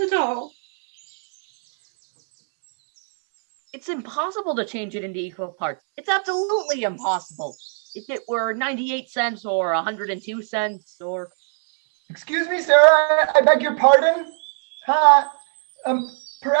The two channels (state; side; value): silent; left; 64 dB below the other